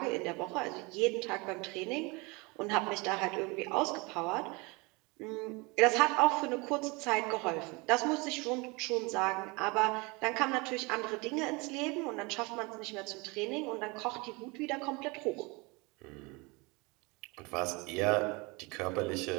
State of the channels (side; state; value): left; quieter; 26.8 dB